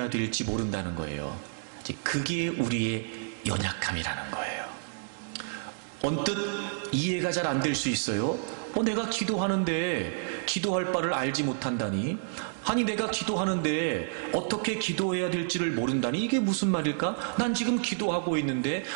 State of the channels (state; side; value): silent; left; digital silence